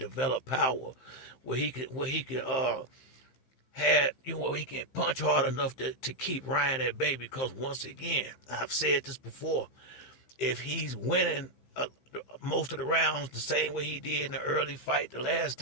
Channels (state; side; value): late; right; 15 ms